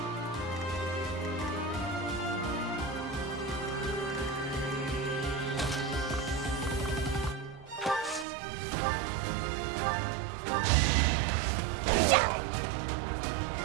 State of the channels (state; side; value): drops out; left; at 8.2 s